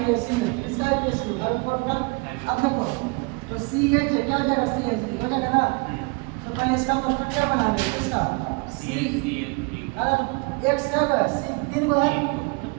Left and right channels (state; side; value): quieter; left; 29.3 dB